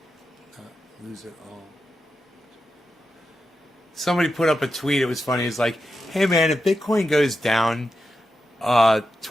Lose it all. Somebody put up a tweet. It was funny. It's like, hey man, if Bitcoin goes down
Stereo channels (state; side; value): normal; both; correlation 0.88